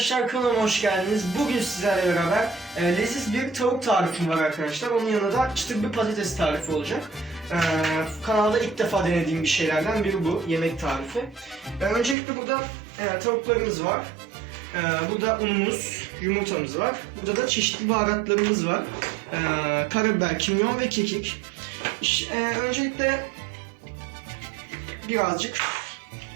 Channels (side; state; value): left; drops out; at 12.2 s